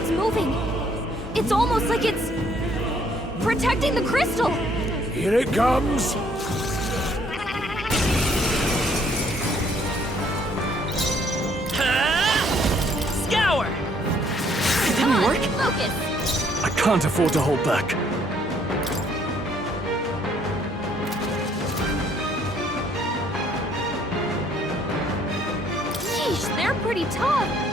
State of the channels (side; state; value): both; normal; correlation 0.65